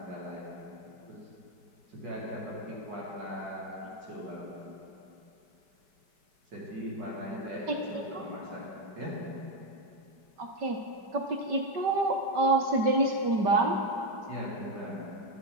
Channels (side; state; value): left; late; 5.2 ms